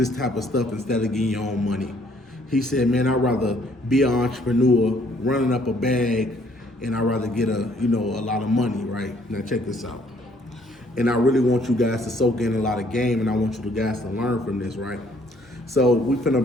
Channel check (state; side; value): normal; both; correlation 0.64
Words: type of stuff instead of getting your own money?" He said, "Man, I'd rather be an entrepreneur, running up a bag, and I'd rather get a lot of money, right?" Now check this out. And I really want you guys to soak in a lot of game, and I want you guys to learn from this, right? So we